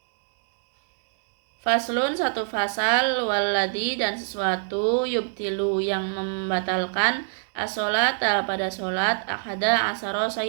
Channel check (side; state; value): left; silent; 61 dB below the other